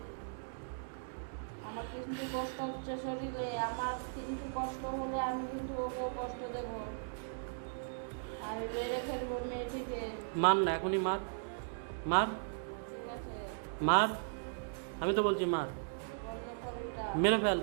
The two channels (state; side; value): silent; left; digital silence